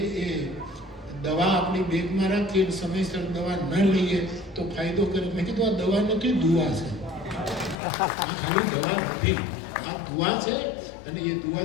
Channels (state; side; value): drops out; right; at 7.8 s